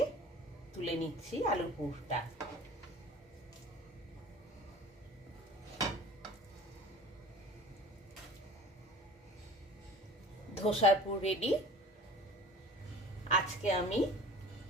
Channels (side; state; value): both; normal; correlation 0.42